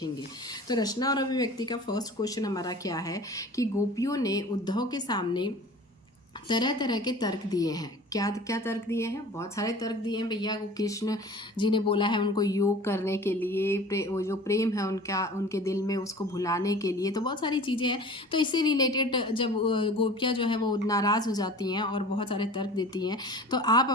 तो रचना और अभिव्यक्ति का फर्स्ट क्वेश्चन हमारा क्या है कि गोपियों ने उद्धव के सामने तरह तरह के तर्क दिए हैं। क्या क्या तर्क दिए हैं? बहुत सारे तर्क दिए हैं भैया। वो कृष्ण जी ने बोला है उनको योग करने के लिए, वो जो प्रेम है उनका उनके दिल में, उसको भुलाने के लिए। तो बहुत सारी चीज़ें हैं। तो इससे रिलेटेड जब गोपियाँ जो है वो नाराज़ हो जाती हैं और बहुत सारे तर्क देती हैं, तो आप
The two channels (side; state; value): both; normal; correlation 0.42